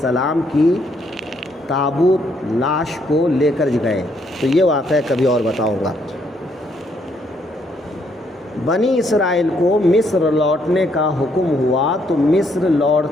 کی تابوت لاش کو لے کر گئے، تو یہ واقعہ کبھی اور بتاؤں گا۔ بنی اسرائیل کو مصر لوٹنے کا حکم ہوا، تو مصر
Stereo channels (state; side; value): normal; both; correlation 0.71